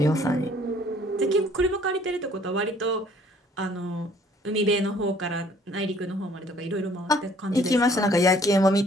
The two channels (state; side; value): normal; both; correlation 0.59